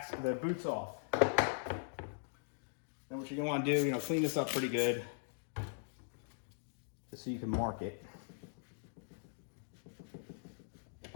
boot's off. Then what you're gonna wanna do, clean this up pretty good, just so you can mark it.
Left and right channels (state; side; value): silent; right; digital silence